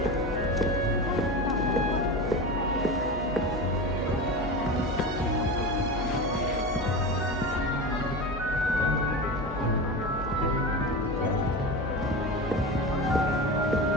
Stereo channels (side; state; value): both; normal; correlation 0.25